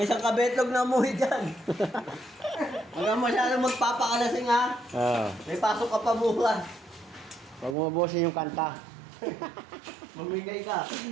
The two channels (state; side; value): drops out; left; at 7.8 s